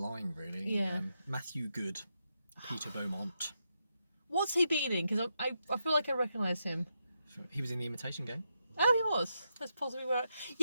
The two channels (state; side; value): inverted; both; correlation -0.83